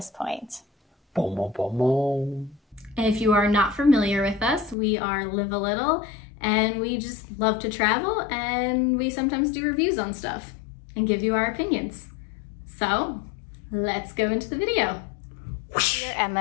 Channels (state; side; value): drops out; right; at 4.8 s